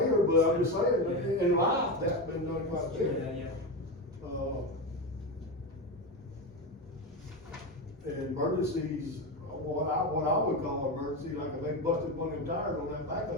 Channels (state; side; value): normal; both; correlation 0.17